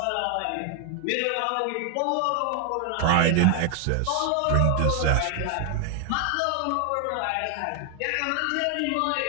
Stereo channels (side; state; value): both; different; correlation 0.00